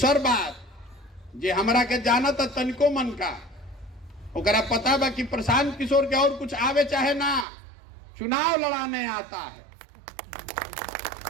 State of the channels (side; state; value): left; drops out; at 7.5 s